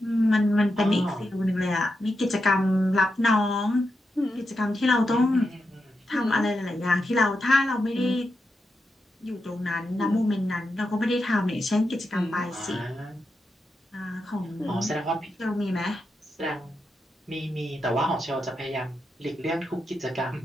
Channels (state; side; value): normal; both; correlation 0.87